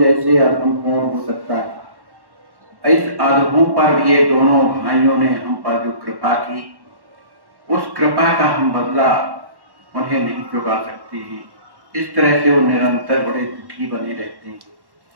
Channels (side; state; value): left; late; 1.1 ms